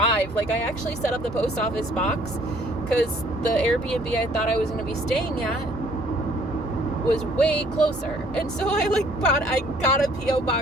I actually set up the post office box because the Airbnb I thought I was going to be staying at was way closer. And so I got a P.O.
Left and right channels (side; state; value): both; normal; correlation 0.59